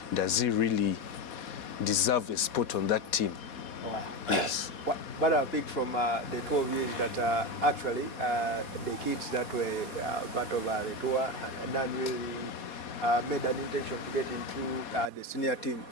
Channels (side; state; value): right; late; 4.2 ms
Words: does he really deserve a spot on that team? Yes. What I picked from the two of you is that actually the kids that were part of the tour done really made an intention to get into the senior team.